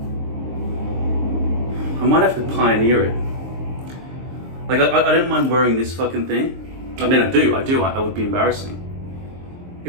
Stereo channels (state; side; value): late; left; 23 ms